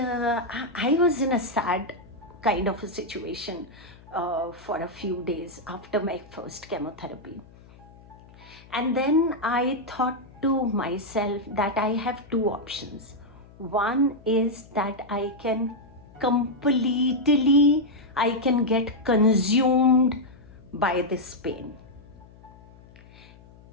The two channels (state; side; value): noise; left; hum, 23 dB below the sound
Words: was in a sad kind of a situation for a few days after my first chemotherapy. And then I thought to myself that I have two options. One is that I can get consumed by this pain.